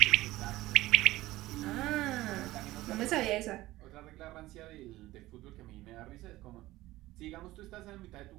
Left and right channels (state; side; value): quieter; left; 17.4 dB